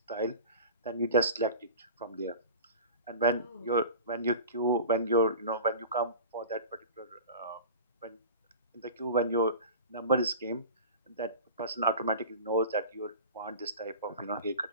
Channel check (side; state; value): both; inverted; correlation -0.36